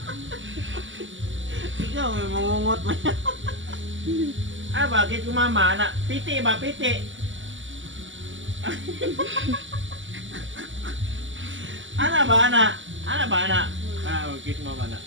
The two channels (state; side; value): late; left; 0.55 ms